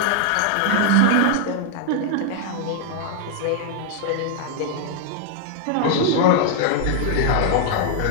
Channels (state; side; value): different; both; correlation 0.00